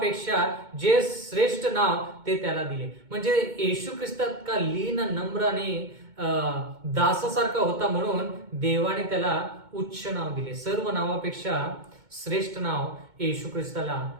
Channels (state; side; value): late; left; 2.2 ms